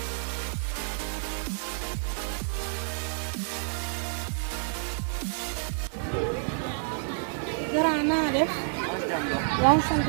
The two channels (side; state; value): left; silent; 59 dB below the other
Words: Gara naa def yaa ngi sant